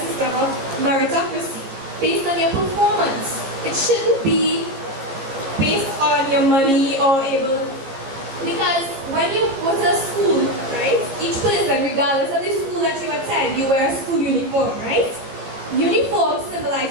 system of meritocracy, based on your performance. It shouldn't be based on your money or able, because when you go to a school, right, each person, regardless of the school that you attend, you wear a school uniform, right? Uniform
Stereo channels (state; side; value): late; left; 15 ms